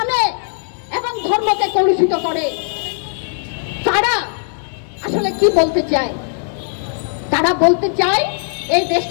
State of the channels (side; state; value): right; silent; digital silence